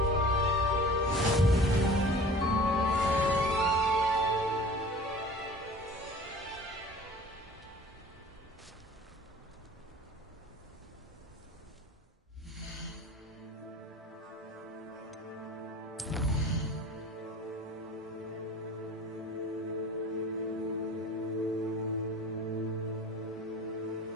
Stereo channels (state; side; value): normal; both; correlation 0.43